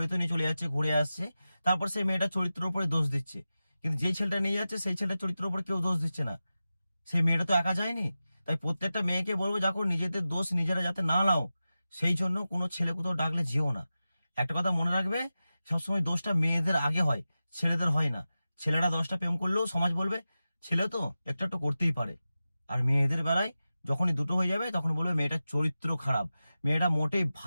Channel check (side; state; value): both; inverted; correlation -0.94